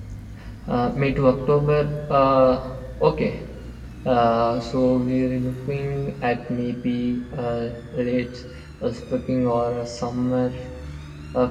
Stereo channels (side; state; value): both; identical; correlation 1.00